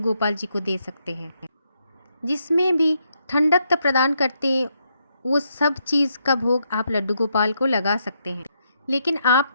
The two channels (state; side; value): inverted; both; correlation -0.78